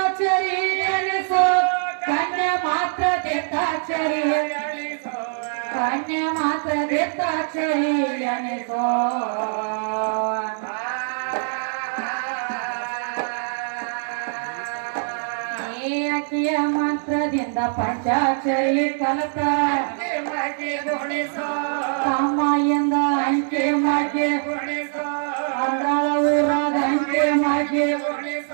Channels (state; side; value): silent; left; 63 dB below the other